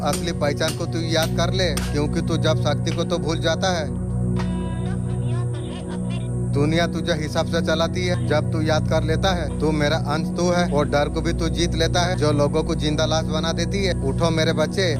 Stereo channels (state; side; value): identical; both; correlation 1.00